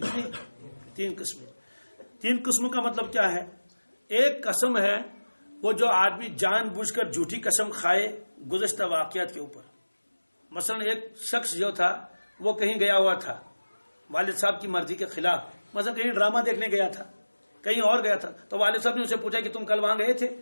3 قسمیں. 3 قسموں کا مطلب کیا ہے؟ ایک قسم ہے وہ جو آدمی جان بوجھ کر جھوٹی قسم کھائے گزشتہ واقعات کے اوپر. مثلا ایک شخص جو تھا وہ کہیں گیا ہوا تھا والد صاحب کی مرضی کے خلاف، مثلا کہیں ڈرامہ دیکھنے گیا تھا، کہیں اور گیا تھا، تو والد صاحب نے اسے پوچھا کہ تم کل وہاں گئے تھے،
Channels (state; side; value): inverted; both; correlation -1.00